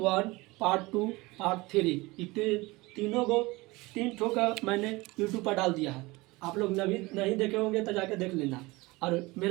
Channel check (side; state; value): left; quieter; 22.3 dB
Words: पार्ट 2, पार्ट 3, तीनों को 3 ठो का मैंने यूट्यूब पर डाल दिया है। आप लोग नहीं देखे होंगे तो जाके देख लेना। और